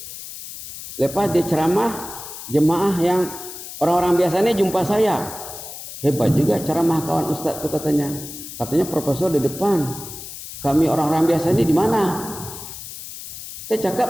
Lepas dia ceramah, jemaah yang orang-orang biasanya jumpa saya. Hebat juga ceramah kawan ustaz itu, katanya. Katanya profesor di depan. Kami orang-orang biasa ini di mana? Saya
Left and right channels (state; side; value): noise; left; hiss, 11 dB below the sound